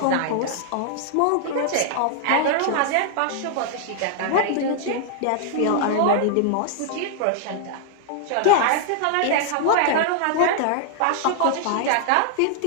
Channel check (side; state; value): both; different; correlation -0.01